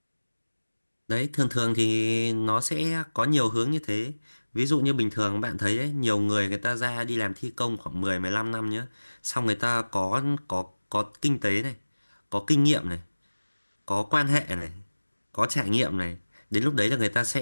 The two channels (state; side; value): inverted; both; correlation -1.00